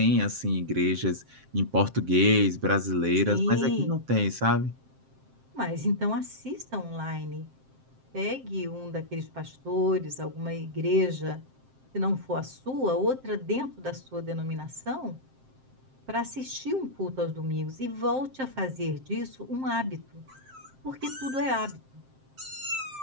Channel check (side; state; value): left; late; 7.6 ms